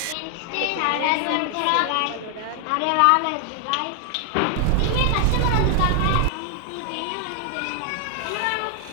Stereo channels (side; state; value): both; different; correlation 0.00